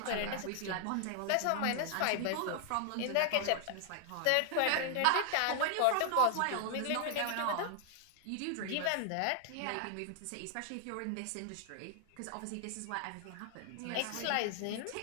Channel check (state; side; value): different; both; correlation 0.00